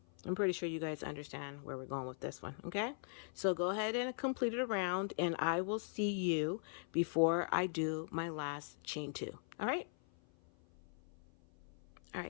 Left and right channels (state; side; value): silent; right; 51 dB below the other